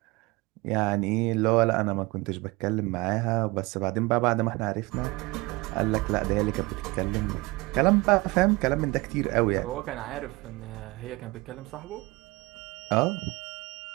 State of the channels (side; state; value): left; quieter; 23.1 dB